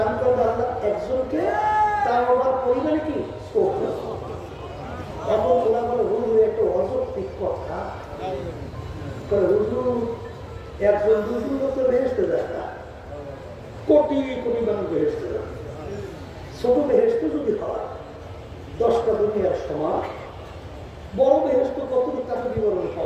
করবে আল্লাহ একজনকে, তাও আবার পরিমাণে কি ছোট। এখন ওরা বলে হুজুর একটা অযৌক্তিক কথা, হুজুর একজন দুজন লোক বেহেশতে যায় না, কোটি কোটি মানুষ বেহেশতে যায়। ছোট বেহেশত যদি হয় 10টা দুনিয়ার সমান, বড় বেহেশত কতটুকু তাকে বিবরণ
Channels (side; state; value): both; identical; correlation 1.00